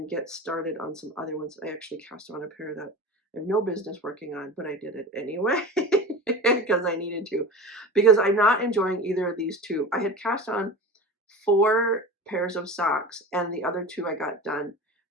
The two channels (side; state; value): both; normal; correlation 0.30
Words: get started on some other ones. I actually cast on a pair that I have no business working on, but I did it anyway. because I needed to, because I'm not enjoying either of these two. I had cast on 4 pairs of socks, and the other 2 I got done,